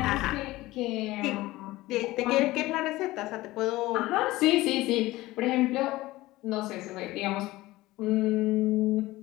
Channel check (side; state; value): right; quieter; 18.3 dB